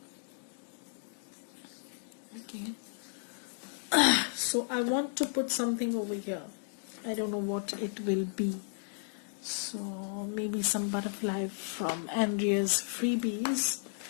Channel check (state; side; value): silent; right; digital silence